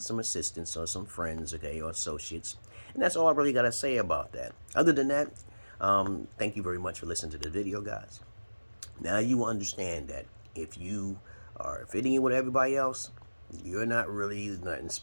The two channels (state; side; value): inverted; both; correlation -1.00